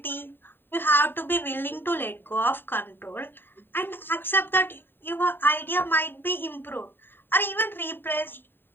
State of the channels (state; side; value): late; right; 0.097 ms